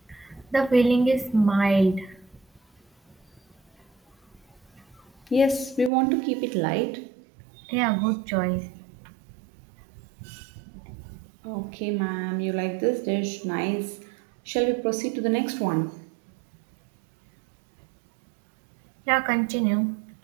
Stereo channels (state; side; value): drops out; left; at 5.9 s